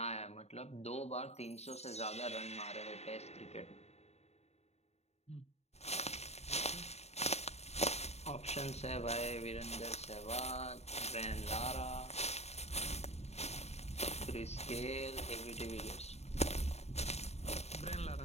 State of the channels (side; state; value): right; late; 0.31 ms